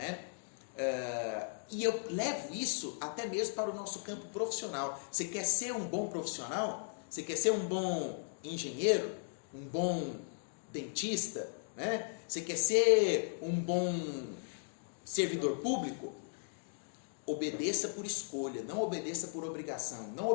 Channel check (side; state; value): right; silent; digital silence